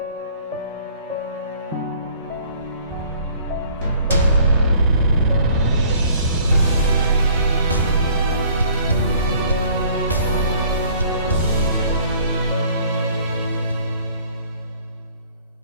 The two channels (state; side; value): inverted; both; correlation -0.56